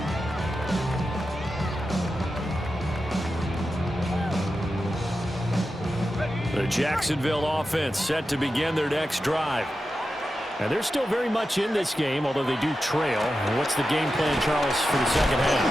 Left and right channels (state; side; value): normal; both; correlation 0.91